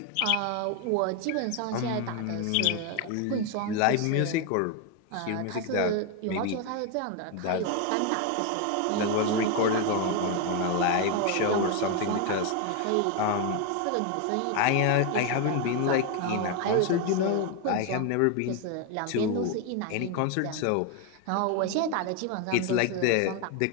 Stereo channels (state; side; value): different; both; correlation 0.01